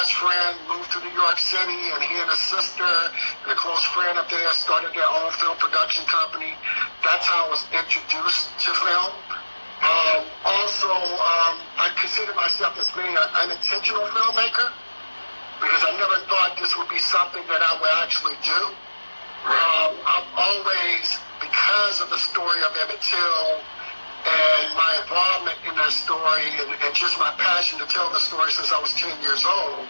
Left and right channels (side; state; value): both; inverted; correlation -1.00